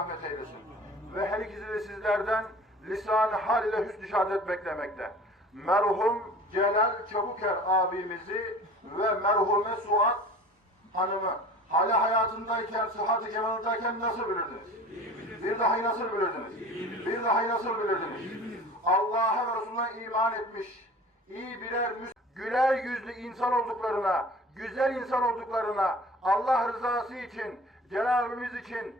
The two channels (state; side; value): normal; both; correlation 0.43